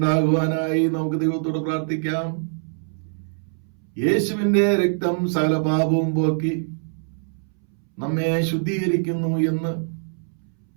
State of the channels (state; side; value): silent; left; 63 dB below the other